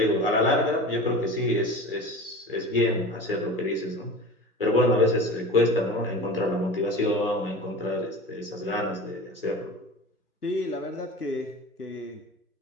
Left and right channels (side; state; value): both; normal; correlation 0.34